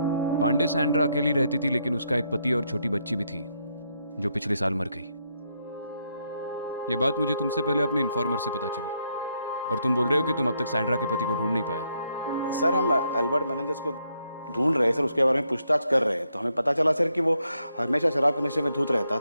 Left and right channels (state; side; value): inverted; both; correlation -0.77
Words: पांडे सैंड्रा अकेली रहती थी, लेकिन उसका एक पति और छोटी बच्ची भी थी जो पिछले साल मर गई। ये बात मुझे तुमसे पहले अपने इन्फॉर्मर से पता चली, और तुम बोल रहे हो कि तुम अब तक सैंड्रा के पति को ढूंढ नहीं पाया। सर हम अल्बर्ट मेनेंजेस को ढूंढ रहे हैं सर, उसके बारे में पूछताछ कर रहे हैं, तो हमें पता चला सर कि वो हमेशा शराब के नशे में धुत रहता